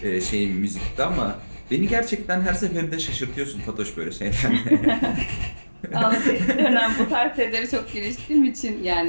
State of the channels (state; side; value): inverted; both; correlation -1.00